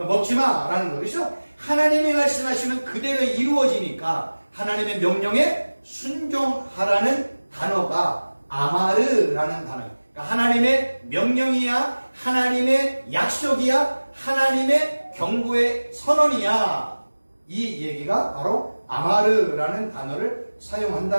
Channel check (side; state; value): both; inverted; correlation -1.00